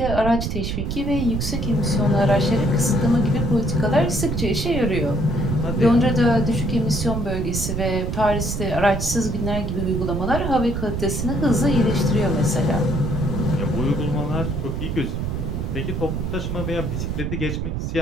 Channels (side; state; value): right; noise; rumble, 2 dB below the sound